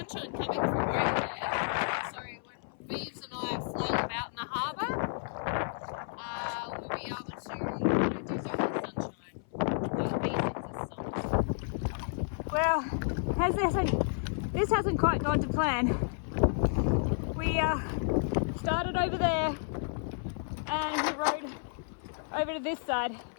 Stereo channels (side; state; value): right; silent; 56 dB below the other